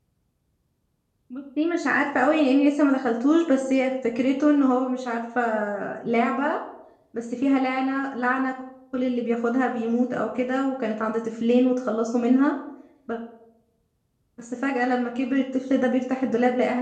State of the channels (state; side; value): identical; both; correlation 1.00